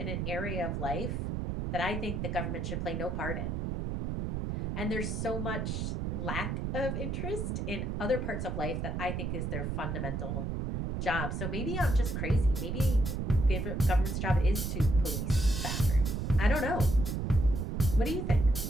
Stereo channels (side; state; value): right; noise; rumble, 2 dB below the sound